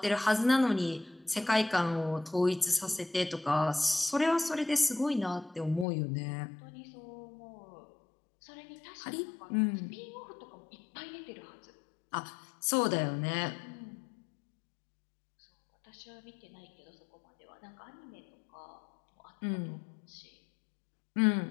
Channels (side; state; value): right; drops out; at 5.9 s